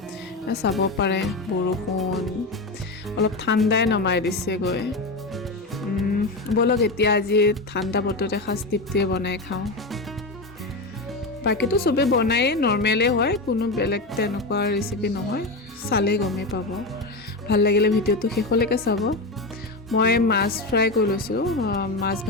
চাব পাৰে বৰষুণ অলপ ঠাণ্ডাই নমাই দিছে গৈ বলক এতিয়া আজি ঠাণ্ডা বতৰতে খাস টিপটিয়ে বনাই খাওঁ বাকিটো সবে বনাই নৰমালে হয় কোনো বেলেগ তেনেকুৱা ৰেচিপি নহয় চালে গমে পাব ভাল লাগিলে ভিডিওটো শেষলৈকে চাব মই মাছ ফ্ৰাই কৰি লৈছোঁ মাছ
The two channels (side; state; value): right; quieter; 3.0 dB